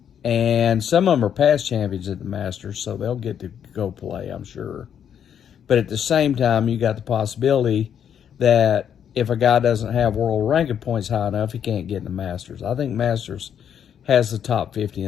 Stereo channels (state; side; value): quieter; right; 8.7 dB